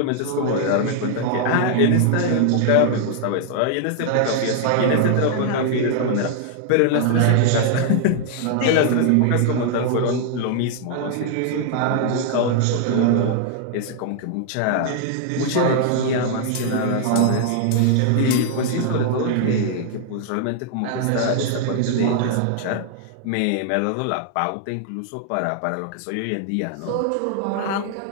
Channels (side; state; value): both; different; correlation 0.00